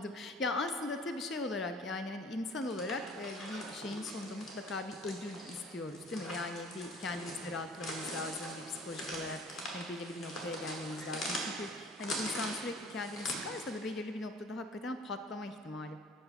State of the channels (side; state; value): both; normal; correlation 0.49